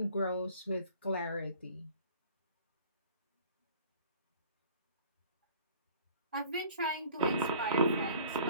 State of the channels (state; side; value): inverted; both; correlation -0.49